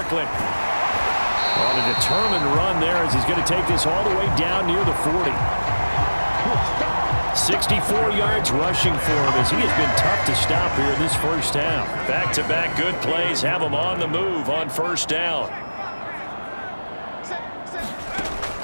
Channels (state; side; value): inverted; both; correlation -1.00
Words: On a determined run there as he's going to take this all the way down near the 40. 64 yards rushing for him as he has been tough to stop here in this first half. Back-to-back good plays have him on the move on 1st down.